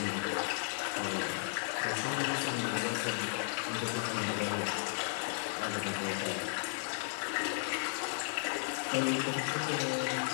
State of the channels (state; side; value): silent; right; digital silence